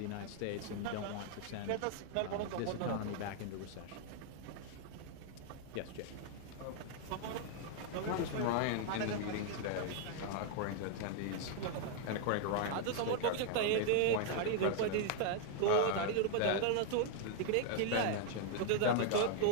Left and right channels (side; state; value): both; different; correlation 0.00